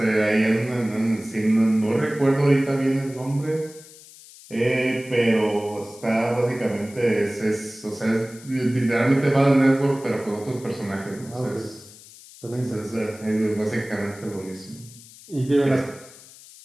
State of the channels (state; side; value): noise; left; hiss, 20 dB below the sound